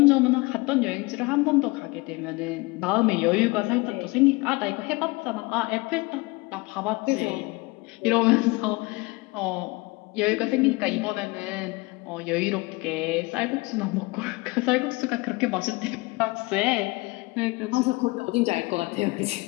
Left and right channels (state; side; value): quieter; right; 24.5 dB